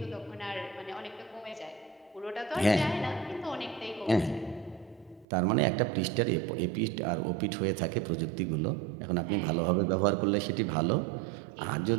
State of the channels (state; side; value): drops out; left; at 5.2 s